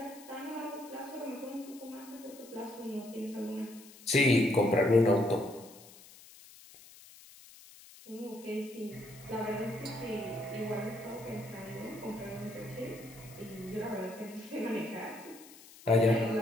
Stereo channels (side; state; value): left; noise; hiss, 20 dB below the sound